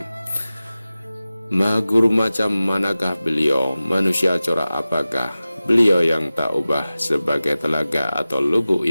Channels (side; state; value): both; inverted; correlation -0.96